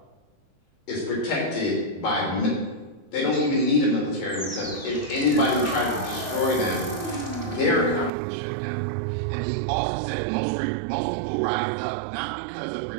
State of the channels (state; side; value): drops out; left; at 8.1 s